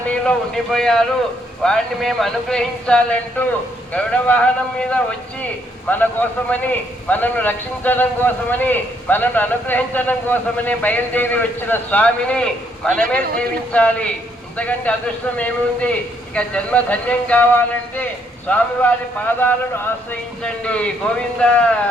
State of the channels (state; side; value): normal; both; correlation 0.71